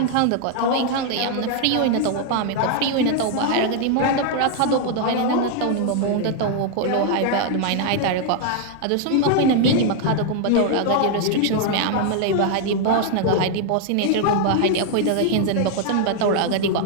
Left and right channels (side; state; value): both; different; correlation 0.00